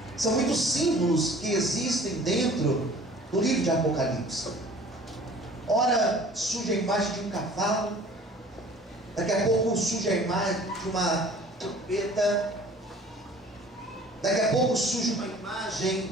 São muitos símbolos que existem dentro do livro de Apocalipse. Ora surge a imagem de um cavalo, daqui a pouco surge a imagem de uma trombeta, daqui a pouco surge uma imagem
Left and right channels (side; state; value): both; normal; correlation 0.49